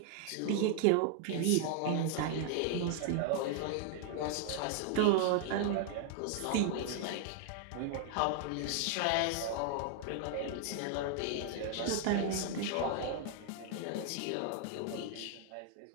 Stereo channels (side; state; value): both; different; correlation 0.00